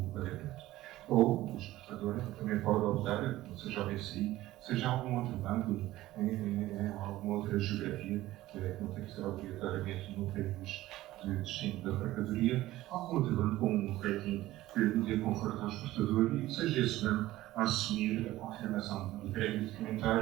pagamento. Ou o exportador também pode optar, seja o BCI, seja algum outro banco, em alguma outra geografia, que não tem que ser obrigatoriamente no país de destino da mercadoria, algum outro banco com um rating que dê conforto ao exportador e que seja esse banco a assumir a confirmação do crédito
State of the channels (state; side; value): quieter; left; 16.1 dB